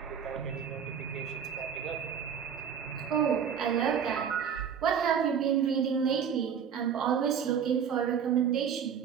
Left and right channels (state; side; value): quieter; left; 7.7 dB